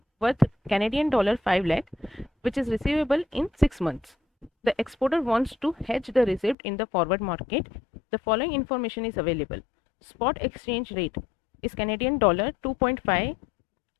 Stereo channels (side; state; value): right; drops out; at 6.6 s